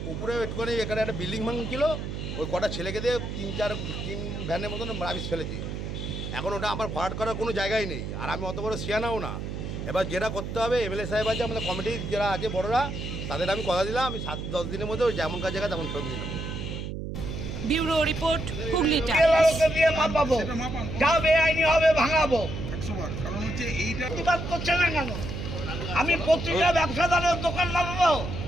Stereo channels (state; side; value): noise; right; hum, 6 dB below the sound